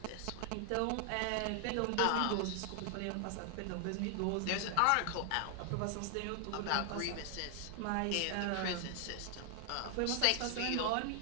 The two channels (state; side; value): different; both; correlation 0.00